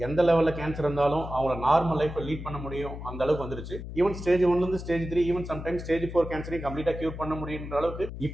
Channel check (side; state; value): left; noise; hum, 9 dB below the sound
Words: எந்த லெவலில் கேன்சர் இருந்தாலும் அவங்கள நார்மல் லைஃப்பை லீட் பண்ண முடியும், அந்த அளவுக்கு வந்துருச்சு. Even stage 1 stage 3, even sometimes stage 4 கேன்சரையும் கம்ப்ளீட்டாக கியூர் பண்ண முடியுன்ற அளவுக்கு